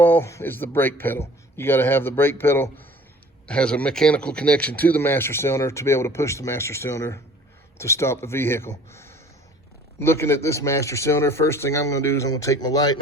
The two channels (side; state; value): both; normal; correlation 0.50